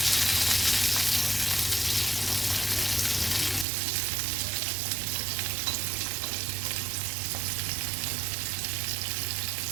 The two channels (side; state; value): left; drops out; at 3.7 s